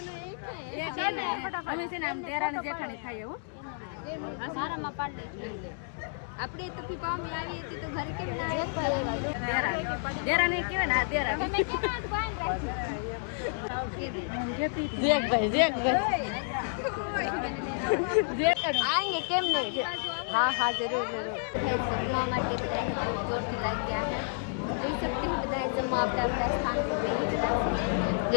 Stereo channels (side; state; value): right; silent; 58 dB below the other